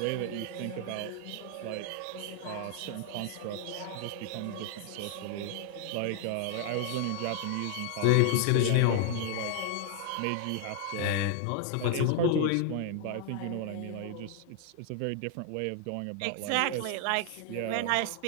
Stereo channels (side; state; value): both; different; correlation 0.00